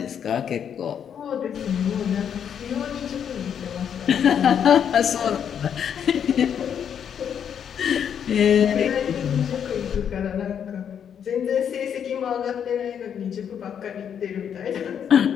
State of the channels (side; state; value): right; quieter; 8.3 dB